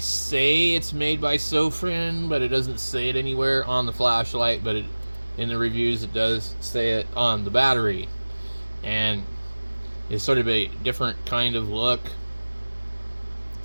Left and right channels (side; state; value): both; inverted; correlation -1.00